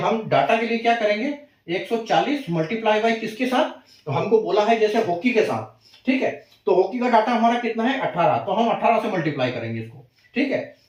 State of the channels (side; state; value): both; identical; correlation 1.00